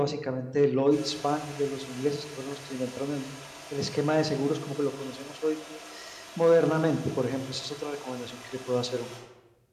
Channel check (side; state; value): both; identical; correlation 1.00